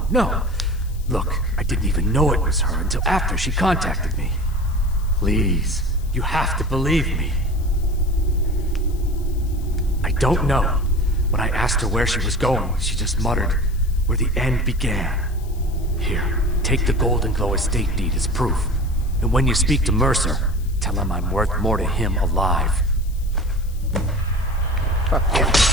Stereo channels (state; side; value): noise; left; hiss, 24 dB below the sound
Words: no. Look, I didn't even know it was her until after she contacted me. Please, you have to believe me. I don't know. When I asked her where she was going, she just muttered, "Where the end began." Here, take the Golden Glow estate deed as proof. And when you speak to Mercer, tell him I'm worth more to him alive. Fuck yeah.